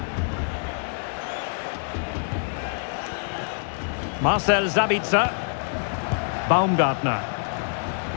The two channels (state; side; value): silent; right; 61 dB below the other